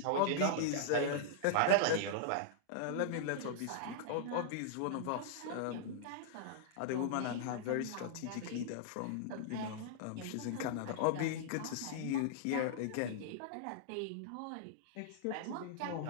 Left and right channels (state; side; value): different; both; correlation -0.01